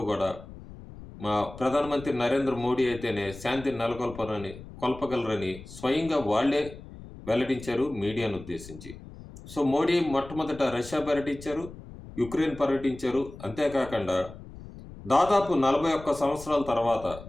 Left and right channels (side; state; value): left; noise; rumble, 15 dB below the sound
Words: కూడా మా ప్రధానమంత్రి నరేంద్ర మోడీ అయితేనే శాంతిని కొల్పగలరని స్వయంగా వాళ్లే వెల్లడించారు మీడియాను ఉద్దేశించి. సో మోడీ మొట్టమొదట రష్యా పర్యటించారు, యుక్రెయిన్ పర్యటించారు. అంతేకాకుండా దాదాపు 41 సంవత్సరాల తర్వాత